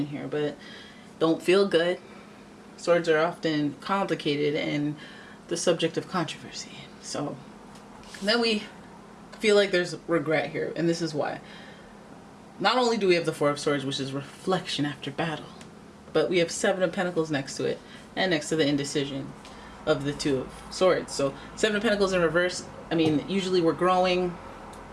here, but don't feel good. Swords are often complicated and the subject of controversy. So then we feel like there's regret here, and this is why. Not only do we have the Four of Swords, which is reflection after battle, but we have Seven of Pentacles next to it, and next to the indecision of the Two of Swords. So Seven of Pentacles in reverse, I mean, usually we're growing,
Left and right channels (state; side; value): identical; both; correlation 1.00